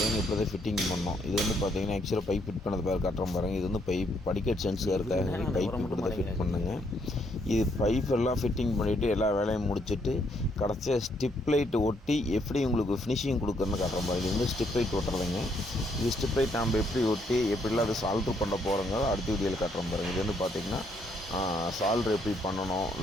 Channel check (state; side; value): normal; both; correlation 0.72